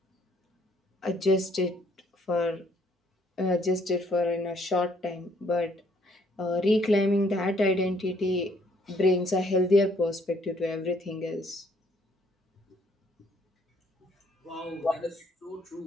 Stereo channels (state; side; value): normal; both; correlation 0.66